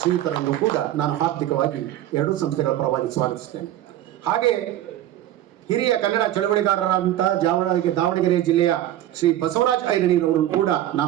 ಕೂಡ ನಾನು ಹಾರ್ದಿಕವಾಗಿ ಎರಡೂ ಸಂಸ್ಥೆಗಳ ಪರವಾಗಿ ಸ್ವಾಗತಿಸ್ತೇನೆ. ಹಾಗೆ ಹಿರಿಯ ಕನ್ನಡ ಚಳವಳಿಗಾರರಾದಂತಹ ದಾವಣಗೆರೆ ಜಿಲ್ಲೆಯ ಶ್ರೀ ಬಸವರಾಜ್ ಐರಣೀರವರನ್ನು ಕೂಡ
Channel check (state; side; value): quieter; left; 12.9 dB